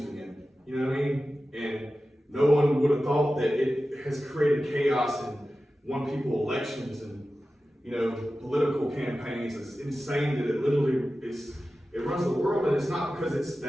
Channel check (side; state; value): both; normal; correlation 0.94